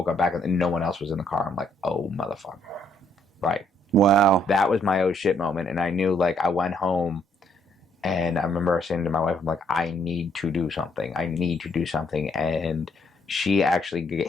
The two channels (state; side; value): normal; both; correlation 0.69